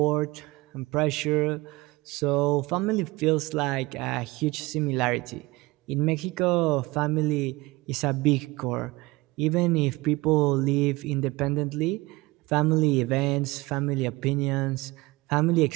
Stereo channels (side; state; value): left; quieter; 22.0 dB